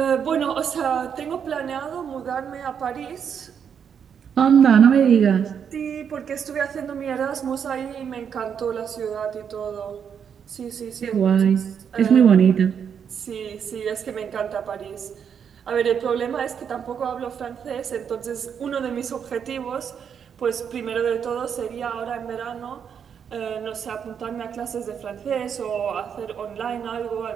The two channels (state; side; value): quieter; left; 7.6 dB